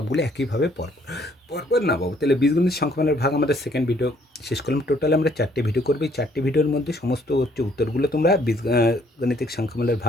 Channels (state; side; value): normal; both; correlation 0.65